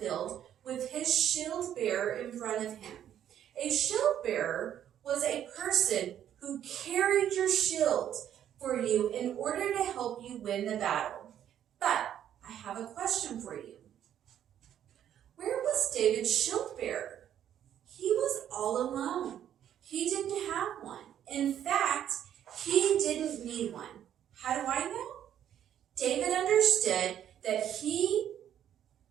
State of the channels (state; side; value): quieter; left; 10.3 dB